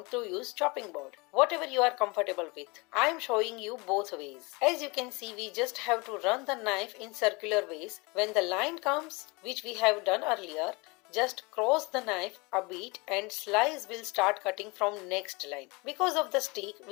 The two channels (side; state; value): right; quieter; 26.9 dB